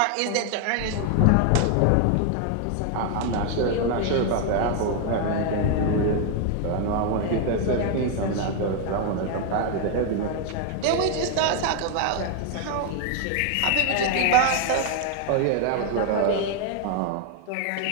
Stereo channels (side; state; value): both; different; correlation 0.01